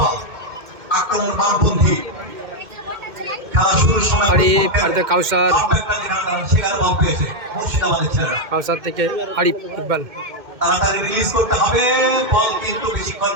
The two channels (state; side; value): late; left; 2.2 ms